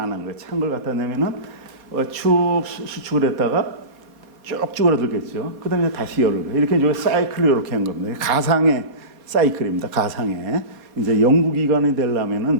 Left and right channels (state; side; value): late; left; 4.2 ms